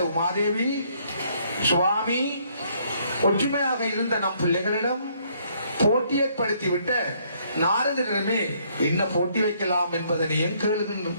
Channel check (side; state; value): both; inverted; correlation -0.67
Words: உமாதேவி, சுவாமி, ஒற்றுமையாக இருந்த நம் பிள்ளைகளிடம் போட்டி ஏற்படுத்திவிட்ட நாரதரிடமே என்ன போட்டி வைக்கலாம் என்பதனையும்